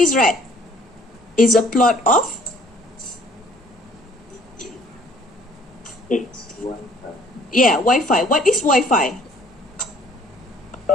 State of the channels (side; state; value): both; normal; correlation 0.57